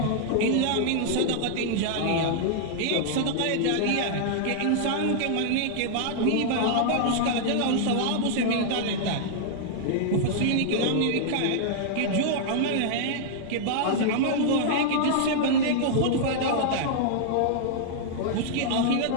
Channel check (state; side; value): different; both; correlation -0.01